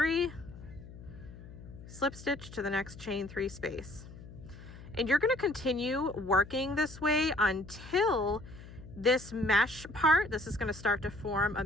slip stitch to the next chain 3 space. And you're going to continue working this way until this mesh part, this is going to start to form a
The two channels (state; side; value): noise; left; hum, 16 dB below the sound